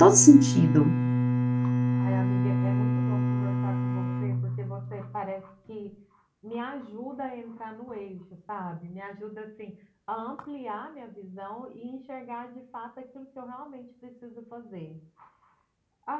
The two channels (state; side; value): identical; both; correlation 1.00